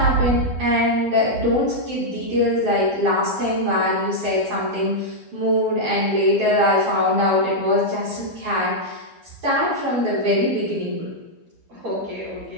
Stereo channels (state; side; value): late; left; 12 ms